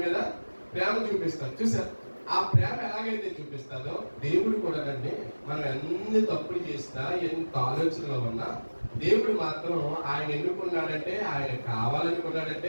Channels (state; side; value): inverted; both; correlation -1.00